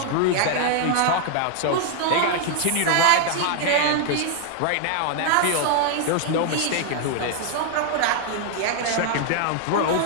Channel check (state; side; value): different; both; correlation 0.00